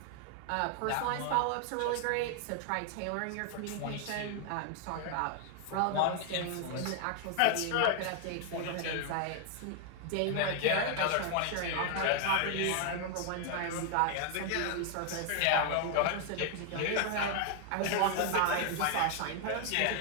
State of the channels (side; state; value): both; different; correlation 0.00